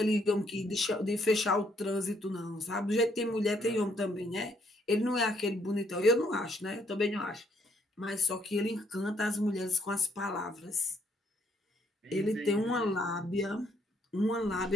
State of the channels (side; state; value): both; normal; correlation 0.69